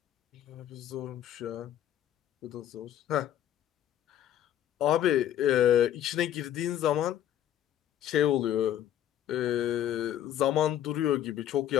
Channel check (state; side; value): quieter; right; 11.2 dB